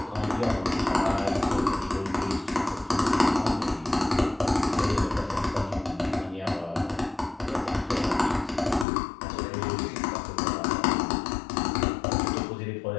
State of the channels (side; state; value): right; drops out; at 8.8 s